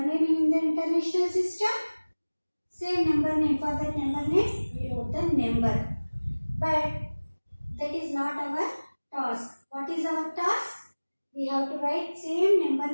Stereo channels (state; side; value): inverted; both; correlation -1.00